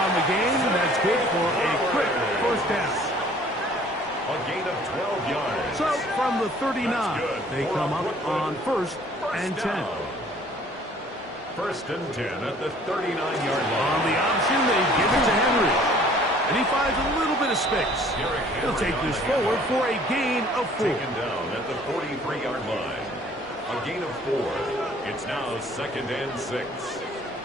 the game. That's good for a quick first down. A gain of 12 yards. So from the 39, they come up on first and 10. First and 10 at the 39-yard line. On the option, they give it to Henry. And he finds a little bit of space. He'll take this forward for a gain of 4. Taken down at the 43-yard line. A gain of 4. It's now 2nd and 6.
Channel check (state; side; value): normal; both; correlation 0.55